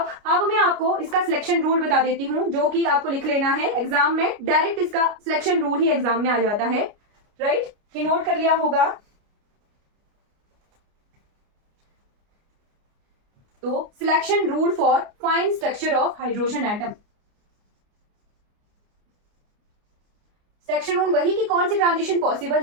मैं आपको इसका सिलेक्शन रूल बता देती हूँ, जो कि आपको लिख लेना है एग्जाम में, डायरेक्ट इसका सिलेक्शन रूल ही एग्जाम में आ जाता है, राइट। ये नोट कर लिया होगा। तो selection rule for fine structure of hydrogen atom. Selection rule वही कि कौन सी ट्रांजिशन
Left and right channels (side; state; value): left; late; 29 ms